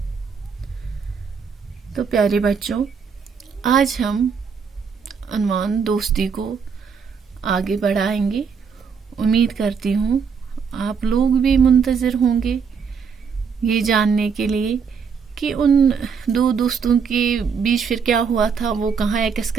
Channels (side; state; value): left; quieter; 6.1 dB